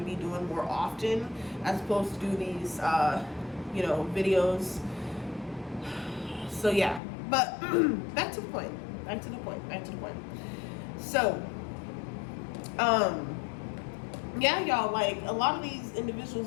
be doing more often, as opposed to do these, videos. So yeah, but back to the point. So, yeah, y'all, like, a lot of these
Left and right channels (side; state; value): right; drops out; at 7.0 s